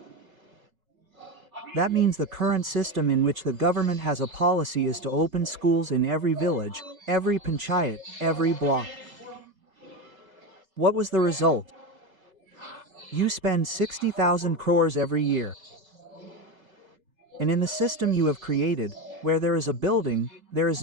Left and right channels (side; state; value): left; late; 3.3 ms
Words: That means the current system in which the government has a policy is to open schools in every village, every panchayat, every block. What was the result? You spend 60,000 crores every year. And in the system you have created, where there is a building, there is